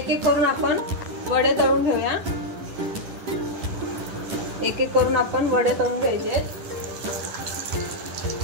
करून आपण वडे तळून घेऊया। एक करून आपण वडे तळून घ्यायचे।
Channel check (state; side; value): late; left; 10 ms